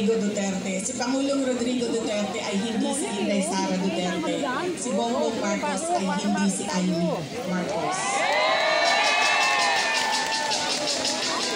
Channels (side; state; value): both; identical; correlation 1.00